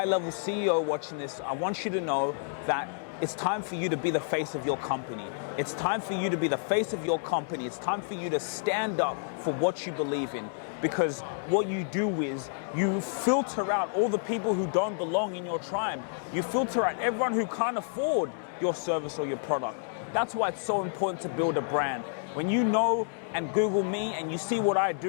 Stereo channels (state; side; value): silent; right; digital silence